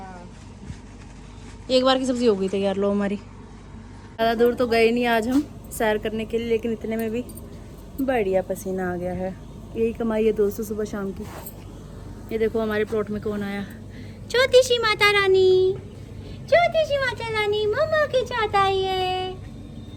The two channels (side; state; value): both; identical; correlation 1.00